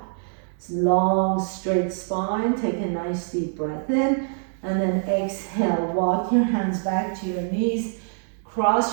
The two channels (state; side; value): silent; left; 62 dB below the other